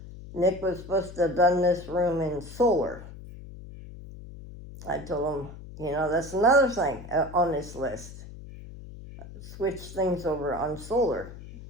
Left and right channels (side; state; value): left; noise; hum, 14 dB below the sound